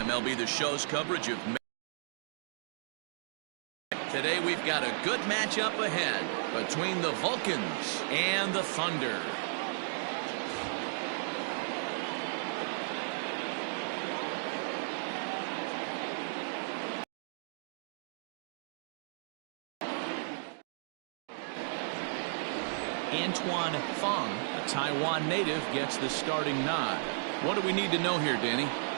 MLB The Show's coverage of today. We've got a good matchup ahead between the Vulcans and the Thunder. Antoine Fong, a Taiwan native, gets the starting nod. What do we need to know here, Danny?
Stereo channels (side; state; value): left; silent; digital silence